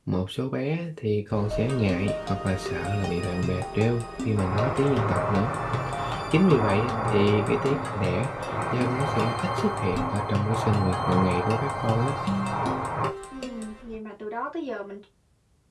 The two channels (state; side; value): identical; both; correlation 1.00